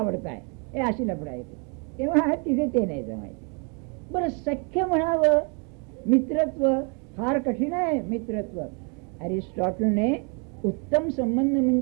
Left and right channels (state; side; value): quieter; left; 36.2 dB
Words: हे अशी लफडा येते, तेव्हा तिथे ते नाही जमायचं. बरं, सख्य म्हणावं, मित्रत्व फार कठीण आहे. मित्रत्व अरिस्टॉटलने उत्तम संबंध